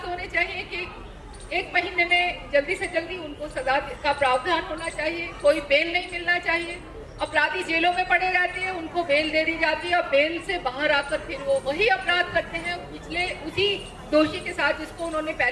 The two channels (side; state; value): both; identical; correlation 1.00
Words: होने चाहिए कि 1 महीने में जल्दी से जल्दी उनको सजा का प्रावधान होना चाहिए। कोई बेल नहीं मिलना चाहिए। अपराधी जेलों में पड़े रहते हैं, उनको बेल दे दी जाती है और बेल से बाहर आकर फिर वो वही अपराध करते हैं। उसी दोषी के साथ जिसको उन्होंने